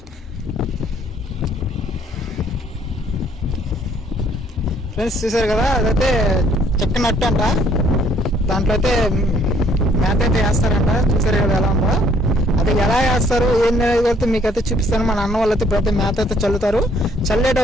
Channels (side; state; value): both; normal; correlation 0.63